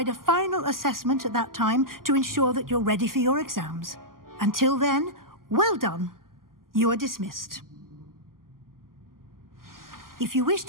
a final assessment at that time to ensure that you're ready for your exams. Until then, well done. You are dismissed. If you wish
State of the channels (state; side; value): late; left; 0.91 ms